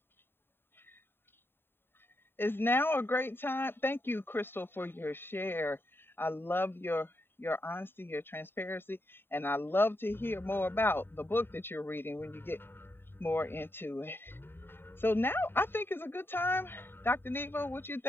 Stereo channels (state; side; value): late; right; 0.11 ms